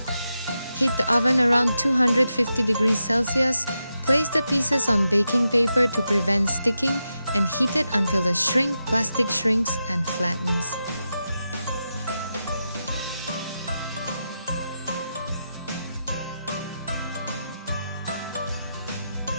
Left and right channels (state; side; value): inverted; both; correlation -0.88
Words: Heat the oven around 250 degrees Celsius. Place the pieces on baking paper to prevent sticking and heat it until the plastic shrinks and flattens.